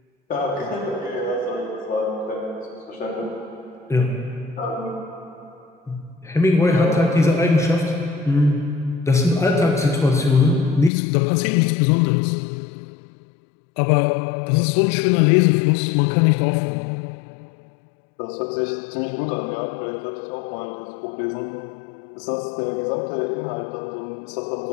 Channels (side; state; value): right; drops out; at 10.9 s